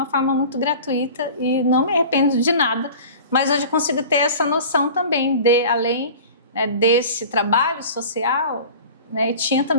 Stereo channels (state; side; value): inverted; both; correlation -0.40